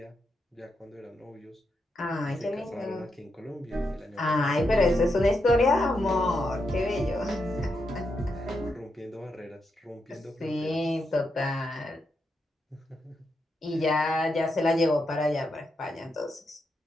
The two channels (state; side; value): normal; both; correlation 0.83